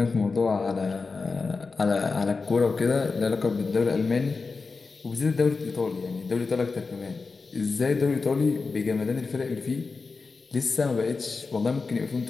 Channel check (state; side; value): quieter; right; 4.3 dB